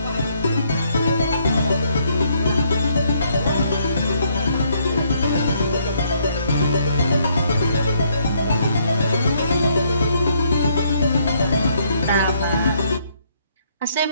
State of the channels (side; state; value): both; inverted; correlation -0.70